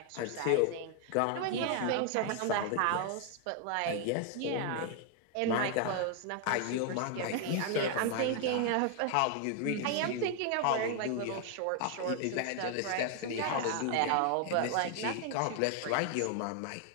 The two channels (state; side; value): different; both; correlation 0.00